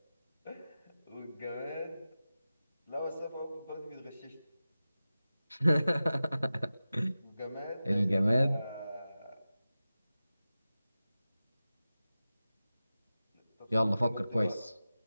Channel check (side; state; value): both; inverted; correlation -0.94